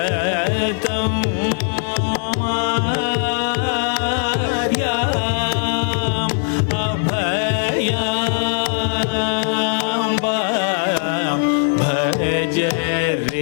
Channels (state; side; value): silent; right; 57 dB below the other